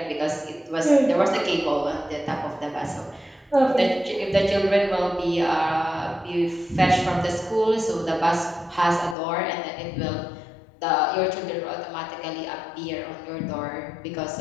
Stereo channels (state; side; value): drops out; right; at 9.2 s